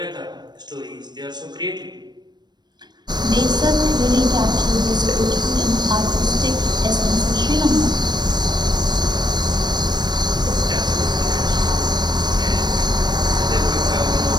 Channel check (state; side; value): late; left; 0.21 ms